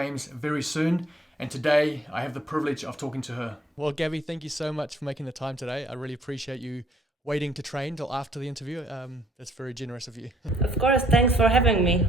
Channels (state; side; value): normal; both; correlation 0.64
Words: very soon, and today I have the privilege of talking to her. Well, Gabby, thank you so much for making the time today. I really appreciate you waiting to train till after the interview. That's very generous of you. Of course, thanks for having me.